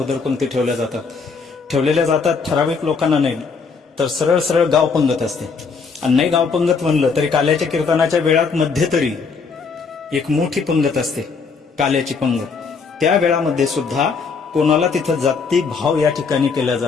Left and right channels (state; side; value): quieter; right; 5.0 dB